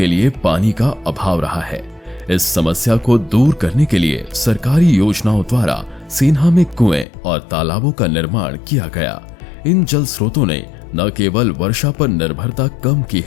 लिए पानी का अभाव रहा है। इस समस्या को दूर करने के लिए सरकारी योजनाओं द्वारा सेन्हा में कुएं और तालाबों का निर्माण किया गया। इन जल स्रोतों ने न केवल वर्षा पर निर्भरता कम की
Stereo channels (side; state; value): right; drops out; at 7.1 s